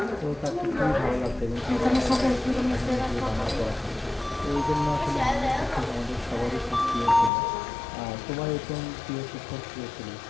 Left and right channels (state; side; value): drops out; right; at 7.3 s